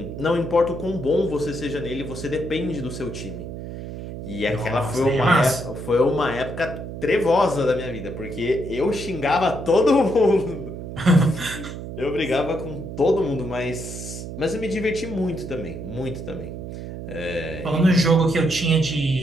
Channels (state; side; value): noise; right; hum, 9 dB below the sound